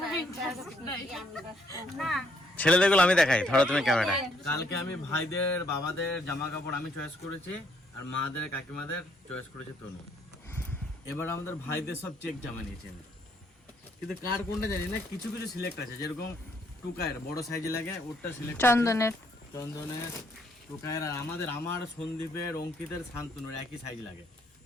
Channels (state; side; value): normal; both; correlation 0.70